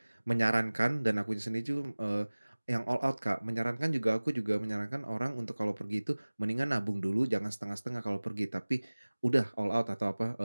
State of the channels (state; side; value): inverted; both; correlation -1.00